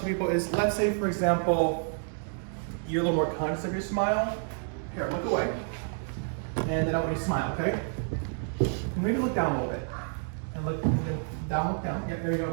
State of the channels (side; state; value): left; silent; 58 dB below the other